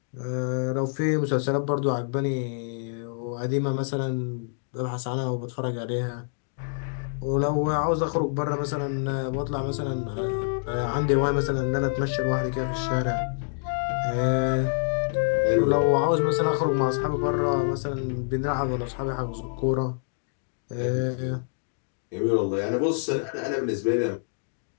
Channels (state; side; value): silent; right; digital silence